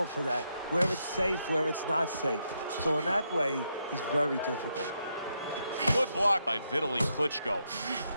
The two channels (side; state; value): both; inverted; correlation -0.80